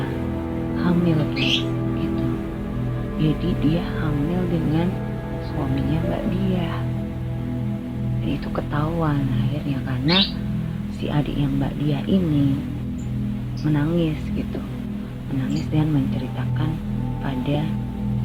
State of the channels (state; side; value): identical; both; correlation 1.00